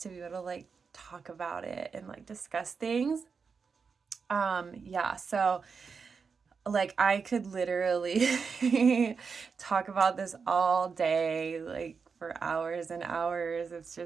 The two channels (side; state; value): left; quieter; 5.5 dB